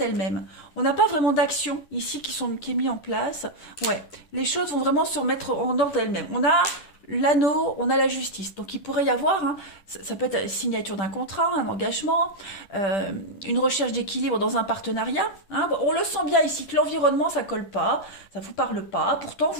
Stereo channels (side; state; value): right; late; 10 ms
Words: On n'a pas vraiment d'action ici qui est mis en place. Ouais, les choses vont vraiment se remettre en ordre d'elles-mêmes. On a l'anneau, on a la justice. Donc il pourrait y avoir, hein, ça peut être la signature d'un contrat, un engagement, une recherche d'équilibre dans un partenariat. Hein. Bon, on le sent bien ici que l'environnement, ça colle pas, ça vous parle pas. Pourtant,